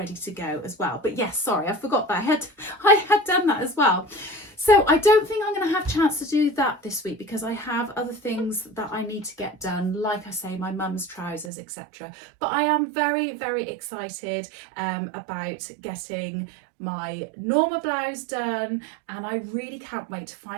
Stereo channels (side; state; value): left; drops out; at 11.5 s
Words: to go as well. But yes, sorry, I forgot that I had done that as well. So I don't think I'm going to have a chance to do that this week because I have other things that I need to get done, like I say, my mum's trousers, etc. But I am very, very excited about getting my normal blouse done, and I really can't wait to